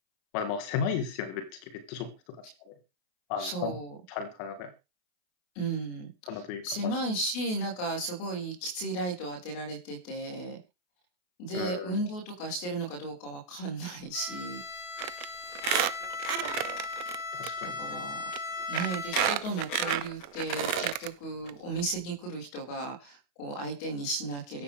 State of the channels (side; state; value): right; late; 32 ms